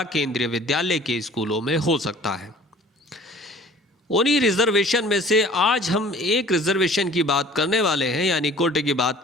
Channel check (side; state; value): both; normal; correlation 0.49